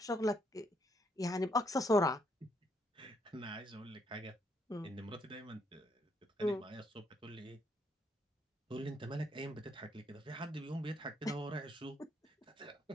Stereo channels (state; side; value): normal; both; correlation 0.73